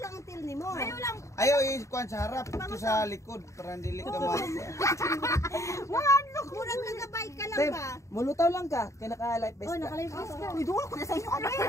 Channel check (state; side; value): late; right; 0.15 ms